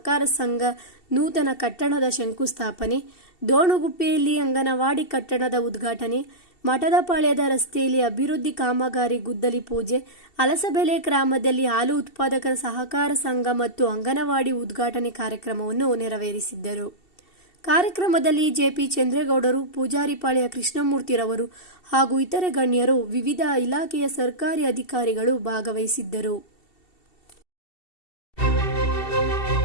ಸಂಘ ನೂತನ ಕಟ್ಟಡದ ಶಂಕುಸ್ಥಾಪನೆ, ದೋಣುಗುಪ್ಪೆಯಲ್ಲಿ ಅಂಗನವಾಡಿ ಕಟ್ಟಡದ ಉದ್ಘಾಟನೆ, ಮಠದಪಾಳ್ಯದ ರಸ್ತೆಯಲ್ಲಿ ಅಭಿವೃದ್ಧಿ ಕಾಮಗಾರಿ ಗುದ್ದಲಿ ಪೂಜೆ, ಅಲಸಬೆಲೆ ಗ್ರಾಮದಲ್ಲಿ ಹಾಲು ಉತ್ಪಾದಕರ ಸಹಕಾರ ಸಂಘ ಮತ್ತು ಅಂಗನವಾಡಿ ಉದ್ಘಾಟನೆ ಕಾರ್ಯಕ್ರಮವನ್ನು ನೆರವೇರಿಸಿದ್ದರು. ಕಾರ್ಯಕ್ರಮದಲ್ಲಿ ಜೆಪಿ ಚಂದ್ರೇಗೌಡರು, ಪೂಜಾರಿಪಾಳ್ಯ ಕೃಷ್ಣಮೂರ್ತಿರವರು ಹಾಗೂ ಇತರೆ ಗಣ್ಯರು, ವಿವಿಧ ಇಲಾಖೆಯ ಸರ್ಕಾರಿ ಅಧಿಕಾರಿಗಳು ಭಾಗವಹಿಸಿದ್ದರು.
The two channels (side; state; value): right; late; 2.7 ms